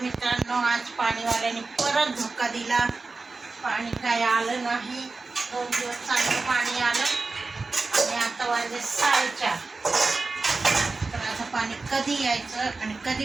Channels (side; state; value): left; quieter; 3.8 dB